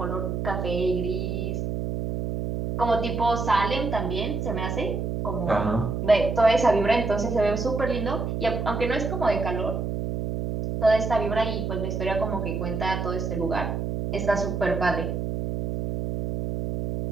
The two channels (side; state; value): right; noise; hum, 2 dB below the sound